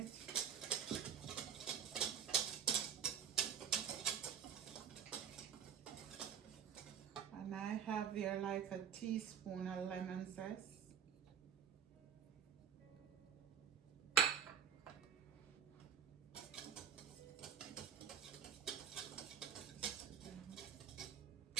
And I have here like a teaspoon of lemon zest.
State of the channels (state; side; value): quieter; left; 8.3 dB